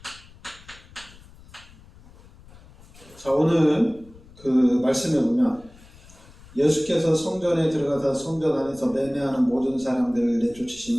자, 오늘 그 말씀에 보면 예수께서 성전에 들어가서 성전 안에서 매매하는 모든 사람들을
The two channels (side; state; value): left; noise; rumble, 23 dB below the sound